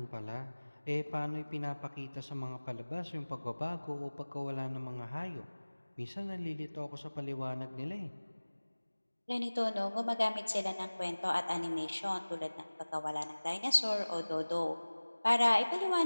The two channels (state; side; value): inverted; both; correlation -1.00